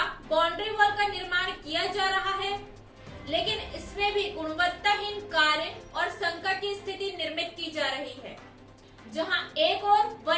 बाउंड्री वॉल का निर्माण किया जा रहा है, लेकिन इसमें भी गुणवत्ताहीन कार्य और संकट की स्थिति निर्मित की जा रही है। जहां एक ओर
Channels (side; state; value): both; identical; correlation 1.00